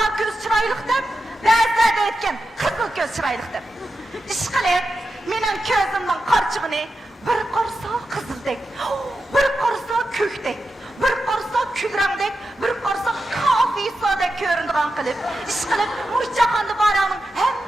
ko'z chiroyliq deb. Ba'zilar deydigan qizil ko'z chiroyliq deb. Ish qilib, mening ko'zimning qorchig'ini bir qarsa qizildek, bir qarsa ko'kdek, bir qarsa kulrangdek, bir qarsa kofisodek ko'rinadigan qilib, ish qilib, mush jahonda borlarning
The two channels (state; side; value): normal; both; correlation 0.90